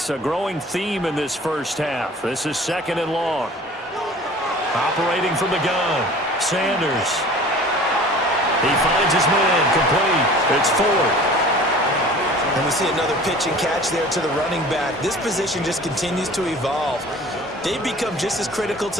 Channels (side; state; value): both; normal; correlation 0.45